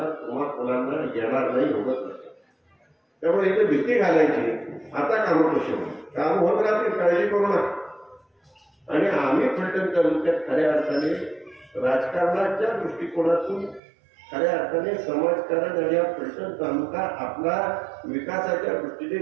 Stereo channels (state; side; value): drops out; left; at 13.8 s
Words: किंवा मुलांना येणार नाही, होत नाही. त्यामुळे इथं भीती घालायची. आता कामं कशी होईल, काम होत राहतील, काळजी करू नका. आणि आम्ही फलटण तालुक्यात खऱ्या अर्थाने राजकारणाच्या दृष्टिकोनातून खऱ्या अर्थाने समाजकारण आणि हा फलटण तालुका आपला विकासाच्या